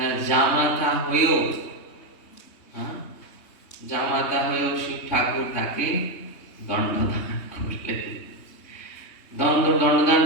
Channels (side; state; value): right; late; 3.2 ms